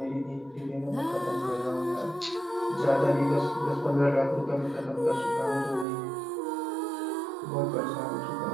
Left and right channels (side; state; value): left; drops out; at 5.9 s